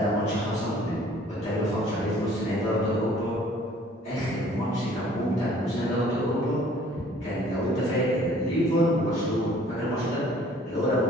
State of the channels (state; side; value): normal; both; correlation 0.55